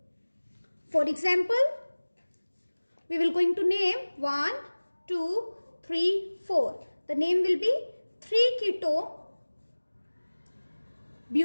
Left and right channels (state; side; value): inverted; both; correlation -1.00